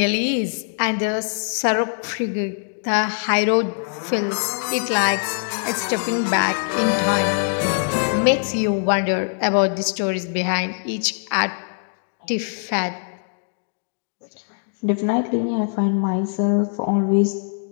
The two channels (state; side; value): silent; right; digital silence